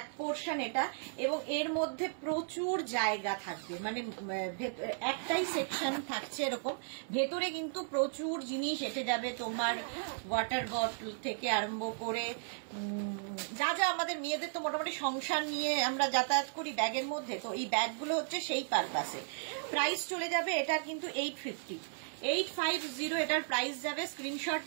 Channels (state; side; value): silent; left; 54 dB below the other